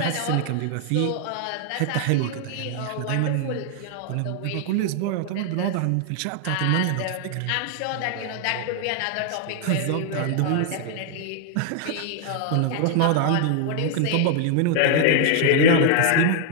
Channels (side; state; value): both; different; correlation 0.00